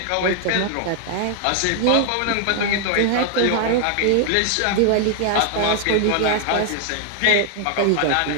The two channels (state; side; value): different; both; correlation 0.00